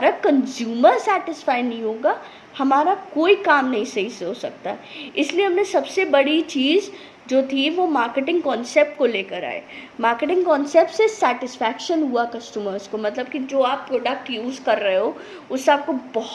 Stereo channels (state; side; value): identical; both; correlation 1.00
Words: कंज्यूमर सेटिस्फाई नहीं होगा, हमारा कोई काम नहीं सही से हो सकता। इसलिए हमने सबसे बड़ी चीज़ जो थी वो मार्केटिंग कॉन्सेप्ट को लेकर आए। मार्केटिंग कॉन्सेप्ट से सेटिस्फैक्शन हुआ कस्टमर्स को, मतलब कि जो आप प्रोडक्ट यूज़ कर रहे हो उससे आपको